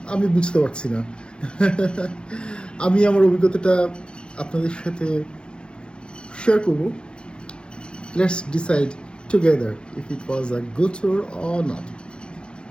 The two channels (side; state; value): right; late; 0.052 ms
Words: আমি বুঝতে পারছি না। আমি আমার অভিজ্ঞতাটা আপনাদের সাথে শেয়ার করব। Let's decide together if it was a good tour or not.